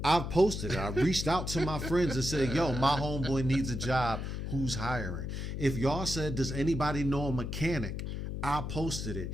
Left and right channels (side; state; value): left; noise; hum, 4 dB below the sound